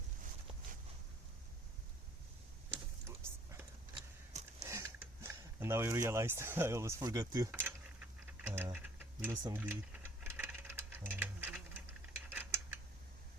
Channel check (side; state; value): both; normal; correlation 0.59